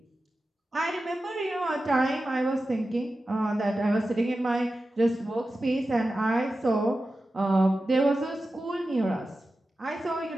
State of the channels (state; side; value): normal; both; correlation 0.93